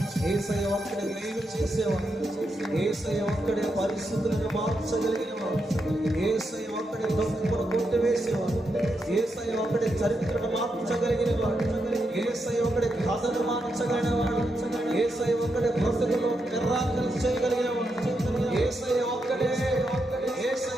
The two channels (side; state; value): both; normal; correlation 0.84